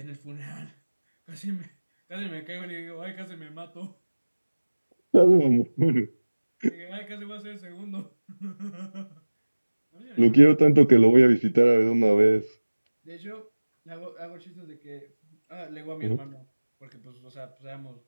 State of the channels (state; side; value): inverted; both; correlation -1.00